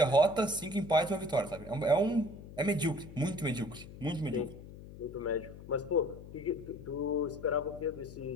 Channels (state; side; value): noise; left; hum, 15 dB below the sound